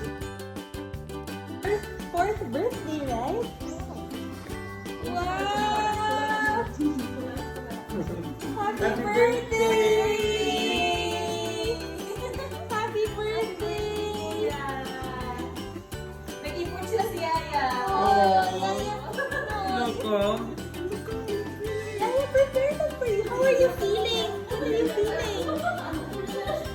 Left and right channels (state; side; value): identical; both; correlation 1.00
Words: Fourth birthday, right? Wow! Happy birthday! Happy birthday! Nag-ipon sila si Yaya. Yaya, prepare that for you. How are you feeling? How are you feeling?